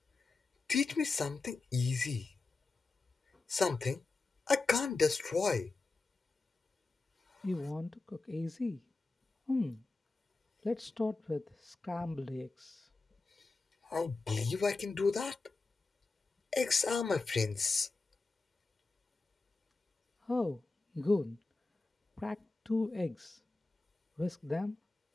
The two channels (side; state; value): right; quieter; 3.6 dB